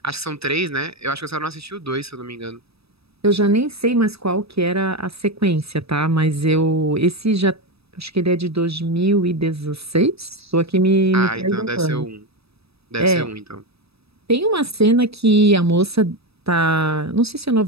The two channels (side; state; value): left; late; 0.78 ms